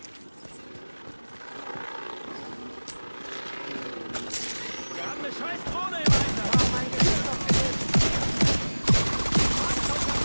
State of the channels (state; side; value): inverted; both; correlation -1.00